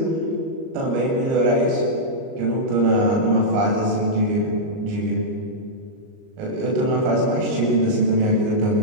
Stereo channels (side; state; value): left; late; 38 ms